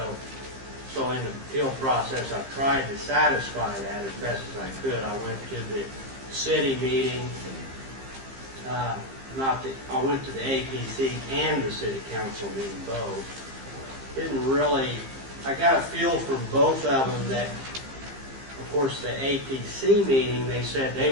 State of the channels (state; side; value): late; left; 15 ms